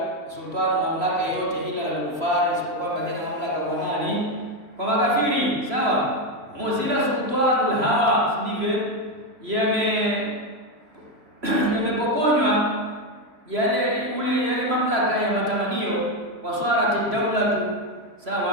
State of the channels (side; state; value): left; late; 3.0 ms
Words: sultan, mamlaka yote, ila al-kufar, isipokuwa baadhi ya mamlaka kwa nani? Kwa makafiri, sawa. Muzila sultanul hawa, si ndivyo? Yamepokonywa yale mamlaka ya matamanio. Waswarati dawlatu,